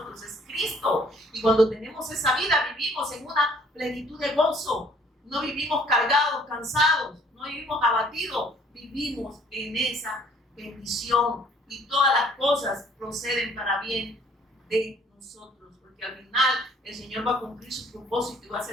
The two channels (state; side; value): normal; both; correlation 0.59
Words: es Cristo. Y cuando tenemos esa vida, vivimos en una plenitud de gozo. No vivimos cargados, cansados, no vivimos abatidos, vivimos en esa bendición y todas las cosas proceden para bien de nosotros, porque al final el Señor va a cumplir su propósito y va a